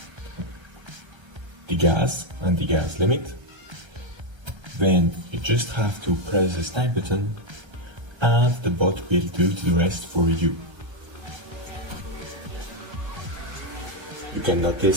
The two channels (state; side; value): late; left; 1.3 ms